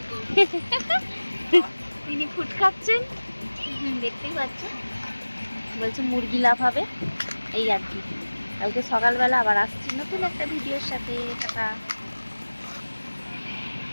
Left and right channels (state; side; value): inverted; both; correlation -1.00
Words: তিনি ফুট খাচ্ছেন, দেখতেই পাচ্ছেন। বলছে মুরগি লাভ হবে, এই আর কি। কালকে সকালবেলা আবার আসছি নতুন একটা ভিডিওর সাথে। টাটা।